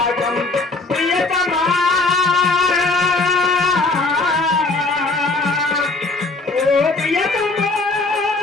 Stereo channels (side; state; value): right; quieter; 3.4 dB